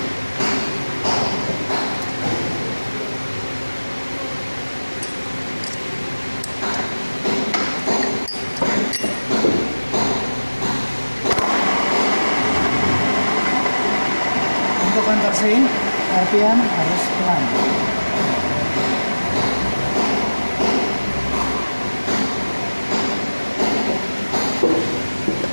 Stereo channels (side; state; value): both; inverted; correlation -1.00